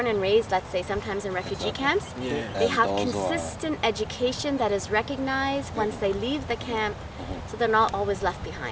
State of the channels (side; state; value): both; identical; correlation 1.00